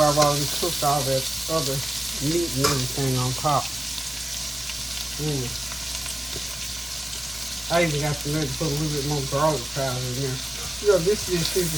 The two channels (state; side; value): normal; both; correlation 0.97